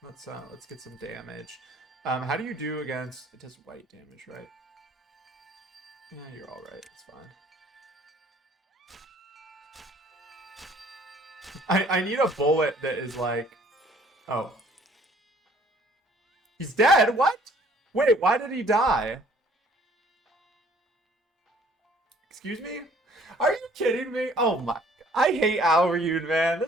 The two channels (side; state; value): both; normal; correlation 0.58